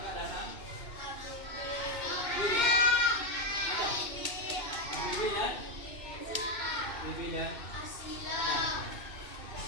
nggak datang? Bibi. Ada? Bibi dan? Bibi dan?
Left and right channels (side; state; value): right; late; 2.6 ms